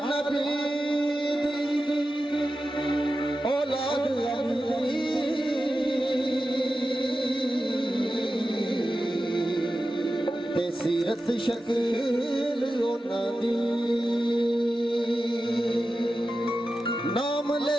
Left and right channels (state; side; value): normal; both; correlation 0.92